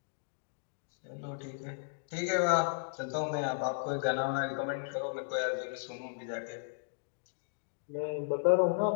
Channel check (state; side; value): silent; right; digital silence